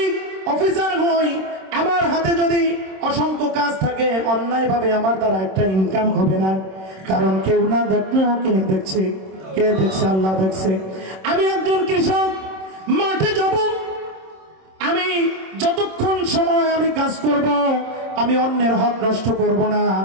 অফিসার হই, আমার হাতে যদি অসংখ্য কাজ থাকে, অন্যায় ভাবে আমার দ্বারা একটা ইনকাম হবে না। কারণ কেউ না দেখলেও কে দেখছে? কে দেখছে? আল্লাহ দেখছে। আমি একজন কৃষক, মাঠে যাব, আমি যতক্ষণ সময় আমি কাজ করব, আমি অন্যের হক নষ্ট করব না,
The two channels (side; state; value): left; late; 26 ms